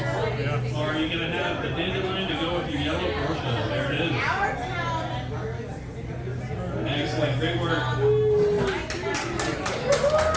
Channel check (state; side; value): identical; both; correlation 1.00